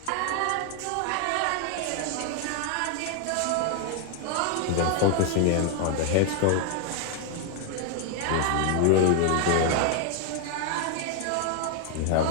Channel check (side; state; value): both; different; correlation 0.01